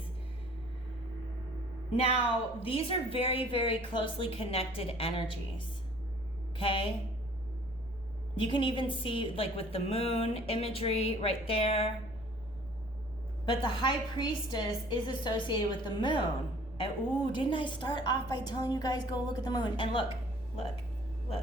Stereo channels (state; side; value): noise; right; rumble, 19 dB below the sound